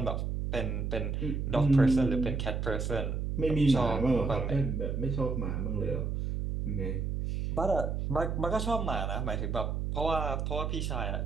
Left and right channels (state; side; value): noise; right; hum, 1 dB below the sound